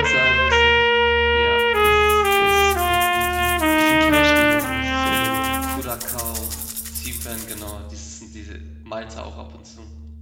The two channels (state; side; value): identical; both; correlation 1.00